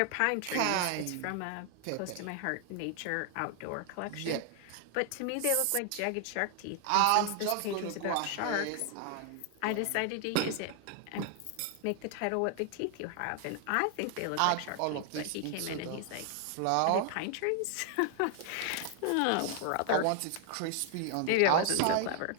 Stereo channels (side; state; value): both; different; correlation 0.00